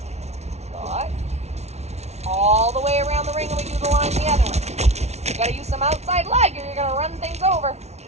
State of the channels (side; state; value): left; late; 0.31 ms